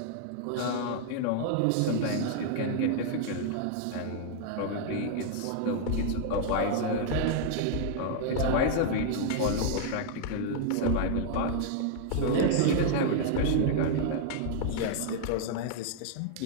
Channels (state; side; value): different; both; correlation -0.01